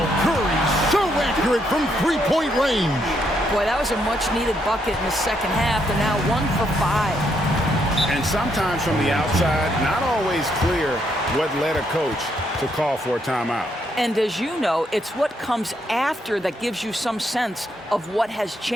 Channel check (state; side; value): normal; both; correlation 0.75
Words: Curry so accurate from three-point range. Boy, that was a much-needed bucket in the second half. They're now 1 for 5. And sometimes from the outside, not always clear what led a coach to call for a timeout. And as you know, it's what comes after that gives you some sense of what has